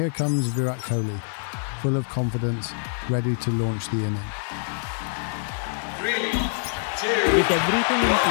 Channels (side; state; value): right; silent; digital silence